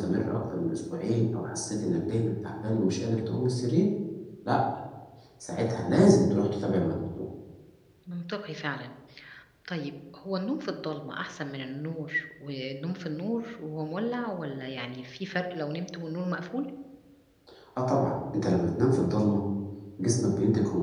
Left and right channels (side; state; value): both; identical; correlation 1.00